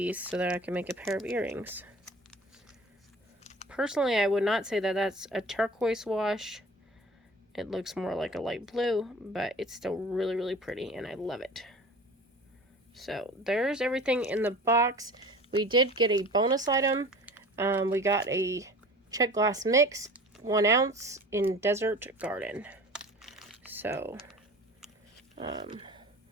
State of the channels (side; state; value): both; normal; correlation 0.41